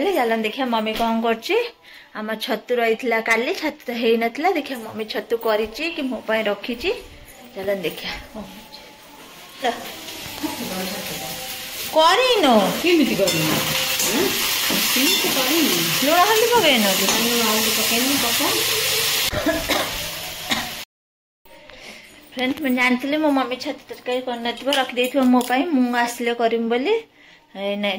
चलन देखिए मम्मी कौन करम छतु रही काली छतु तो हो नाला देखिए मम्मी छतु करी कि मो रखी चलन देखिए लुण हल्दी पकड़ फ्रेंड्स मैं जानती मो मम्मी छतु तरकारी कर रखी मोपाई मुझे आसिले करम बोली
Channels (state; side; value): identical; both; correlation 1.00